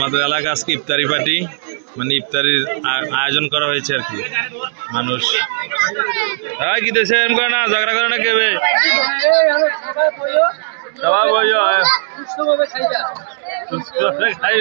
এলাকা আজকে ইফতারি পার্টি মানে ইফতারির আয়োজন করা হয়েছে আর কি মানুষ কি দেশে এম করে না ঝগড়া করে না কেবে সবাই বইও সুস্থভাবে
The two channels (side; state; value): left; silent; digital silence